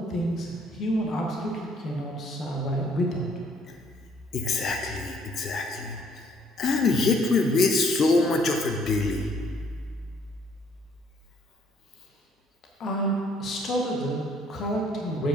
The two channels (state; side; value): normal; both; correlation 0.64